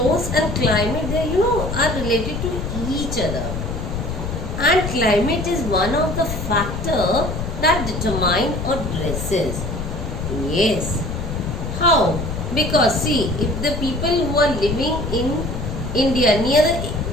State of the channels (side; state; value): left; noise; rumble, 5 dB below the sound